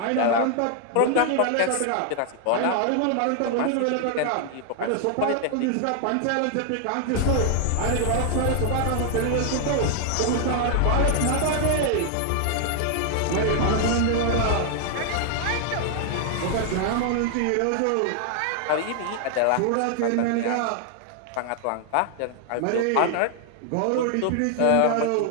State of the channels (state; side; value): different; both; correlation 0.00